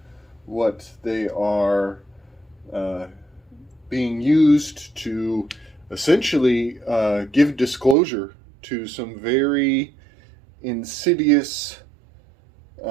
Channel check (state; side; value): drops out; left; at 8.0 s